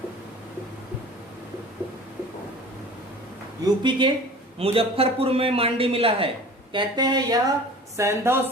यूपी के मुजफ्फरपुर में मांडी मिला है। कहते हैं यह सैंधव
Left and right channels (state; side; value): normal; both; correlation 0.42